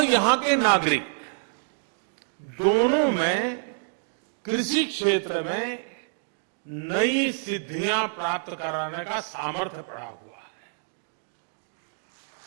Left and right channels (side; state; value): left; silent; digital silence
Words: यहां के नागरिक दोनों में कृषि क्षेत्र में नई सिद्धियां प्राप्त कराने का सामर्थ्य पड़ा हुआ है।